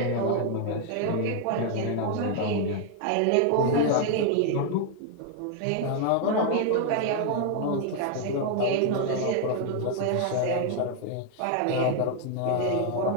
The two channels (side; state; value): both; different; correlation 0.00